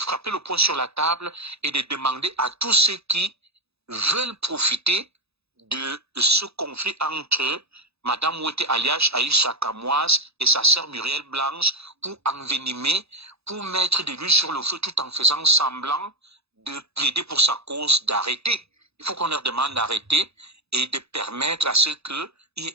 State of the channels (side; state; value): left; late; 0.79 ms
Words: le poing sur la table et de demander à tous ceux qui veulent profiter de ce conflit entre Madame Ouete alias Aïcha Kamoise et sa sœur Muriel Blanche pour envenimer, pour mettre de l'huile sur le feu tout en faisant semblant de plaider pour sa cause, d'arrêter. Il faut qu'on leur demande d'arrêter et de permettre à ce qu'il y ait